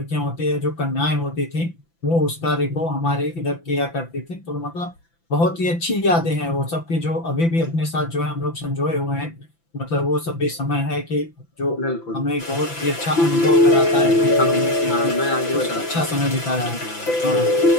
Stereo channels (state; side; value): late; right; 5.9 ms